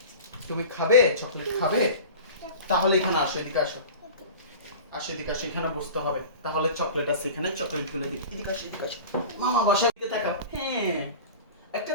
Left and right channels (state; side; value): inverted; both; correlation -0.36